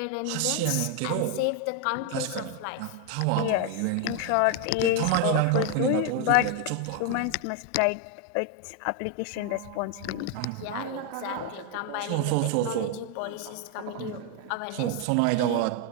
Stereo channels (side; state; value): both; different; correlation 0.01